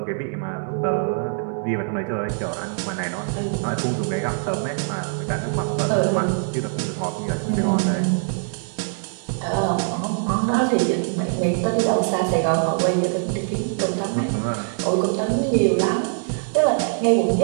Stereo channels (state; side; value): silent; left; digital silence